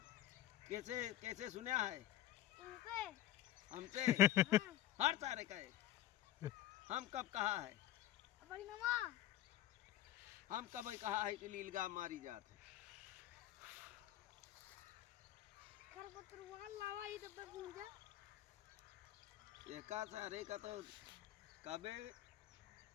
कैसे कैसे सुना है तुमसे हमसे हाँ। हर सारे कहे हम कब कहा है बड़ी मामा हम कब कहा है कि लीलगा मारी जात है खरपतवार लावा ही डब्बे भूंजा एका सारे का तो कबे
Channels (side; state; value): right; quieter; 13.5 dB